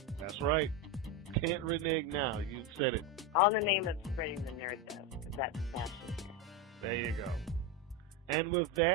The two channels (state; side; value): normal; both; correlation 0.12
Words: That's right. Can't renege now. You said it. All in the name of spreading the nerd, though, because that's fashion. There you go. And with